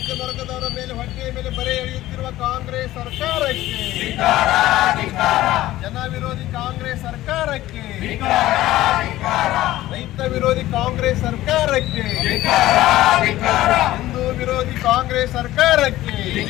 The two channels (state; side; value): quieter; right; 15.6 dB